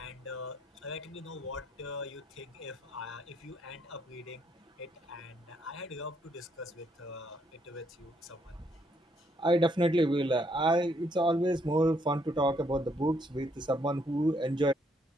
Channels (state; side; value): normal; both; correlation 0.72